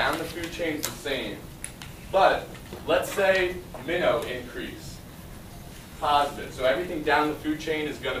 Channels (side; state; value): both; identical; correlation 1.00